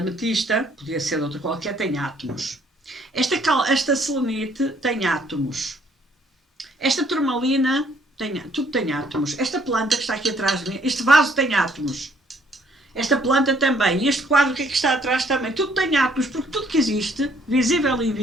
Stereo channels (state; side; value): normal; both; correlation 0.64